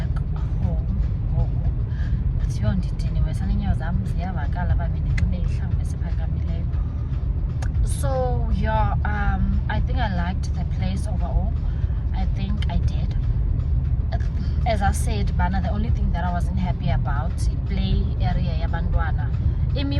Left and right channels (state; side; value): identical; both; correlation 1.00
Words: home. Kuthiwa ndidiniwe sana, iinyawo zam ziyavakala uba bendinxibe ihlangu esiphakamileyo. So yeah, I think I liked the place overall. I think I did. As I said, Bana, the only thing that I wasn't happy about play area yabantwana.